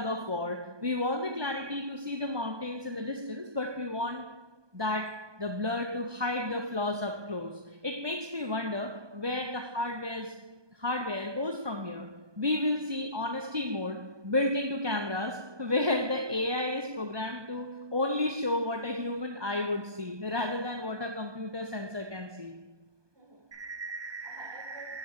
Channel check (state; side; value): late; left; 1.2 ms